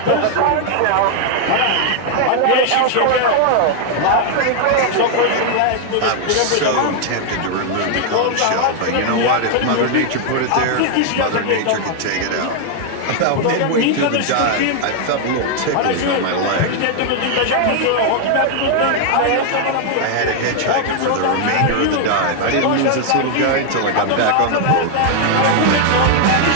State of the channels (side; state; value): both; different; correlation 0.00